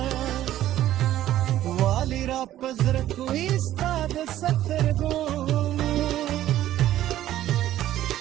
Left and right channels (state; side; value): quieter; left; 13.1 dB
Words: والی را پزر کوي ستاد سترګو